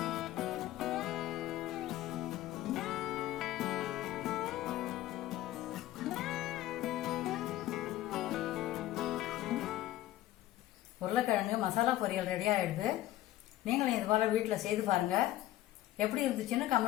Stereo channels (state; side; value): quieter; right; 14.7 dB